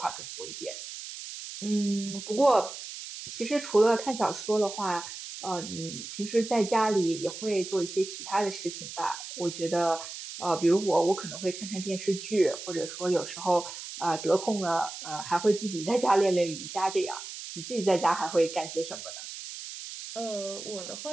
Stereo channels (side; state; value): right; noise; hiss, 10 dB below the sound